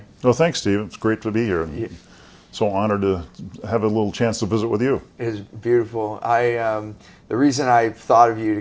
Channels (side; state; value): both; identical; correlation 1.00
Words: Well, thanks, Steve. It's great to be here. I'm so honored to have a little chance to visit with you. It is beautiful. The reason I thought of you to